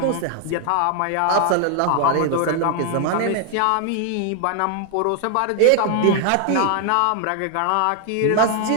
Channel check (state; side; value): different; both; correlation 0.00